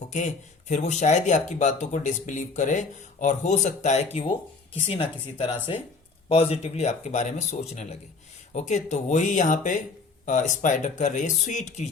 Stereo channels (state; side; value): quieter; right; 4.3 dB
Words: ओके। फिर वो शायद ही आपकी बातों को डिसबिलीव करे, और हो सकता है कि वो किसी ना किसी तरह से पॉजिटिवली आपके बारे में सोचने लगे, ओके। तो वही यहाँ पे स्पाइडर कर रही है, स्वीट